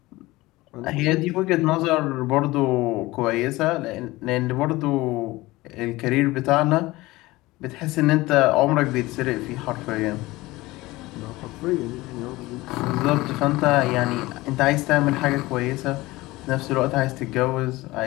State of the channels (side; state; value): right; quieter; 19.8 dB